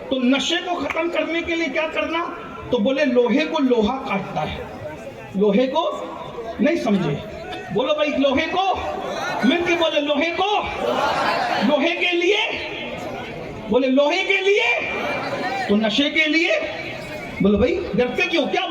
تو نشے کو ختم کرنے کے لیے کیا کرنا؟ تو بولے لوہے کو لوہا کاٹتا ہے، لوہے کو نہیں سمجھے، بولو بھائی لوہے کو، مل کے بولے لوہے کو، لوہے کے لیے، بولے لوہے کے لیے، تو نشے کے لیے، بولو بھائی ڈرتے کیوں، کیا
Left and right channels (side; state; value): both; identical; correlation 1.00